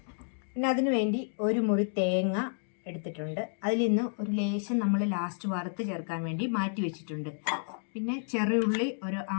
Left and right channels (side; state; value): right; silent; digital silence